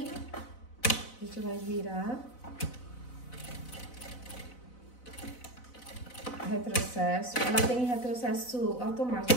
a gente vai virar. Retrocesso. Ela tem retrocesso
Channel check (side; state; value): right; late; 4.0 ms